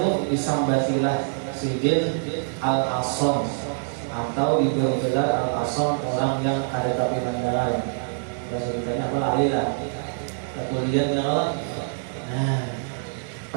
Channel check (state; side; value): silent; left; digital silence